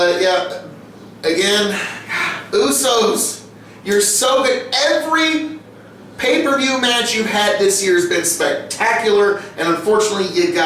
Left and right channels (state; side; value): identical; both; correlation 1.00